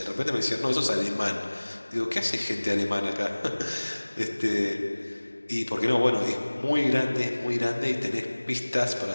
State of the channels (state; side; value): inverted; both; correlation -1.00